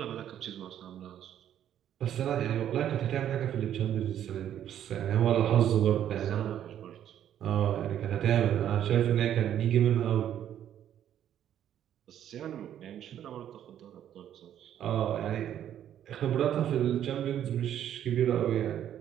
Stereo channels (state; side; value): quieter; left; 10.5 dB